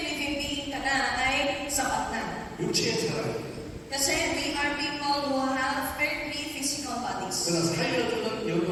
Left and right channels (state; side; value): identical; both; correlation 1.00